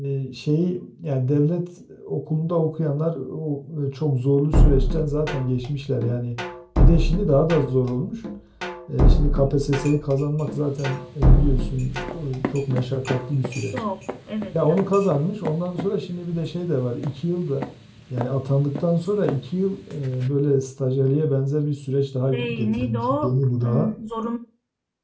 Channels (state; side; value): identical; both; correlation 1.00